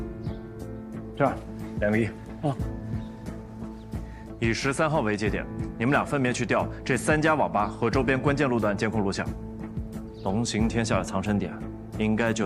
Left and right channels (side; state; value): both; identical; correlation 1.00